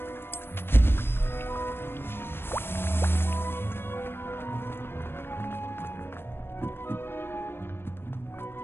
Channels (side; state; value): right; late; 0.11 ms